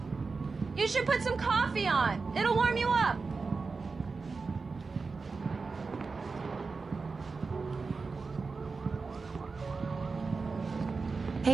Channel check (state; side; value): quieter; left; 4.4 dB